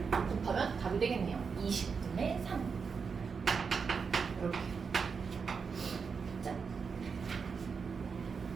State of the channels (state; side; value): quieter; left; 5.6 dB